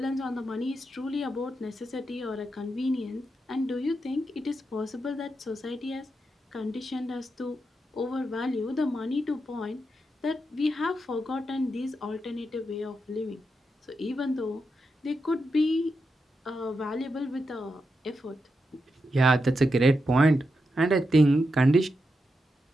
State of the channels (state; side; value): normal; both; correlation 0.86